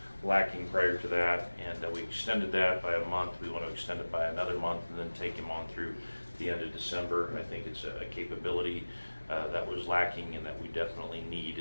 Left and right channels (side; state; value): both; inverted; correlation -1.00